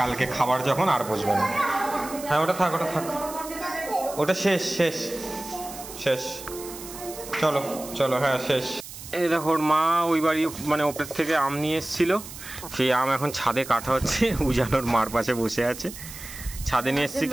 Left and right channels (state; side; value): noise; right; hiss, 13 dB below the sound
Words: খাবার যখন আর বসবে না। হ্যাঁ ওটা থাক ওটা শেষ শেষ শেষ। চলো চলো হ্যাঁ শেষ। এই দেখো মা ওই বাড়ি মানে ওপর থেকে আম নিয়ে এসেছিল, সেই আম এখন ছাদে কাটা হচ্ছে। উজানোর মার পাশে বসে আছে। ছাদে নিয়ে এসেছি